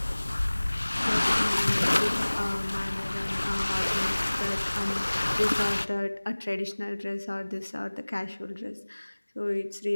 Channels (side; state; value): both; inverted; correlation -1.00